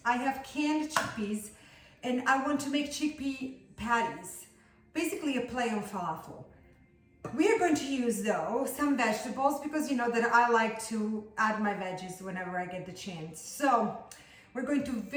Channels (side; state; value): both; identical; correlation 1.00